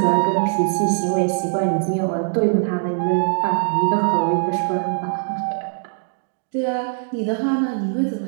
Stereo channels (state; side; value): silent; left; digital silence